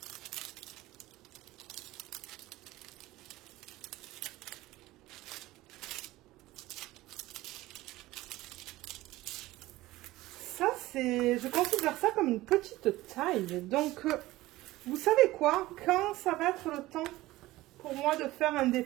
Ça, je considère ça comme une petite taille. Donc, vous savez quoi? Quand ça va être le temps pour moi de faire un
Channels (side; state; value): left; quieter; 17.7 dB